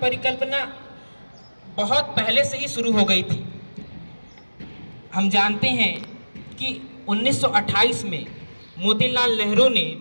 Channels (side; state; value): both; inverted; correlation -1.00